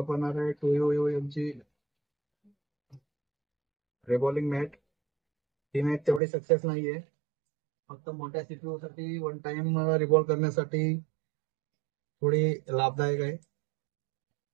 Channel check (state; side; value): drops out; left; at 6.2 s